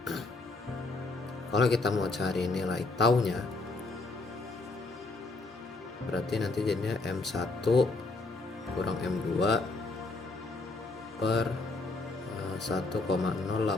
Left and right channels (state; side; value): quieter; right; 3.3 dB